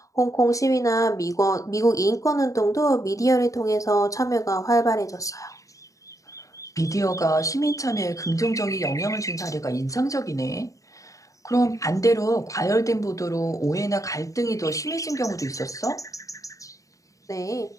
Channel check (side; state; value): right; late; 0.16 ms